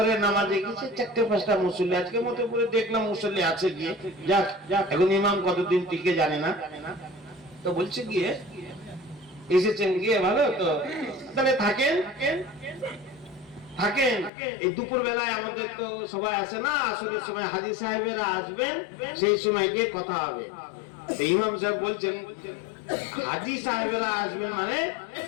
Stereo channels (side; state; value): right; drops out; at 14.3 s